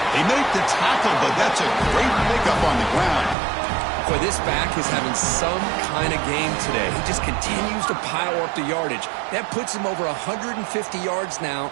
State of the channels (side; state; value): left; drops out; at 3.4 s